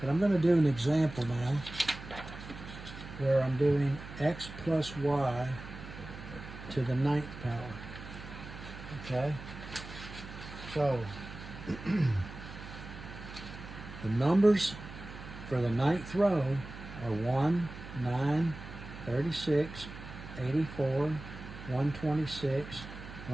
I'm going to do an example now where I'm doing x plus y to the 9th power. Okay? So, the numbers for the 9th row are 1, 9, 36, 84, 126,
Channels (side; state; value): right; noise; hum, 13 dB below the sound